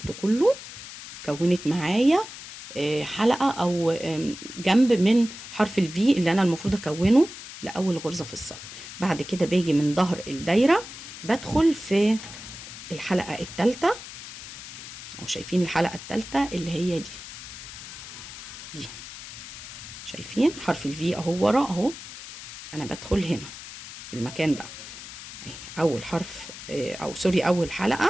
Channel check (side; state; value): left; noise; hiss, 13 dB below the sound